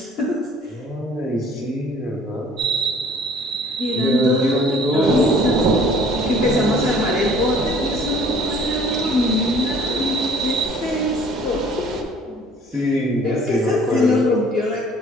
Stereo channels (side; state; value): both; normal; correlation 0.54